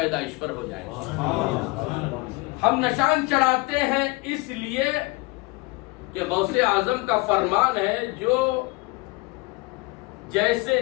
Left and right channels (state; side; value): quieter; right; 24.0 dB